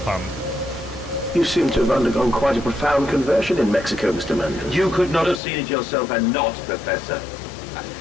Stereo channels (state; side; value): drops out; right; at 5.4 s